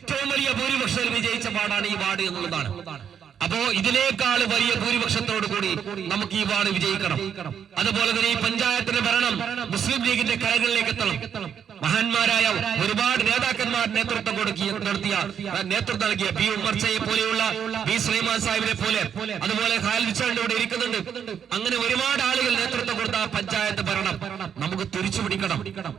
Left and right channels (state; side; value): quieter; left; 8.1 dB